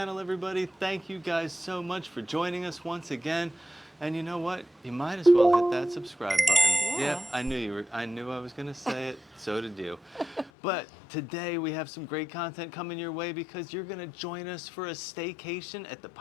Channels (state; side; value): drops out; right; at 10.5 s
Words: everybody. Thank you guys so much for joining us once again. And you know what? You might as well hit that subscribe button. Yep, Yeah. I knew I was gonna say it, so did you. But today we have some great content coming your way because you're gonna join us for a staycation at the